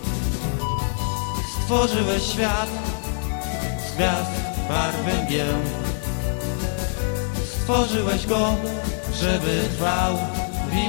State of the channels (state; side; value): silent; right; 63 dB below the other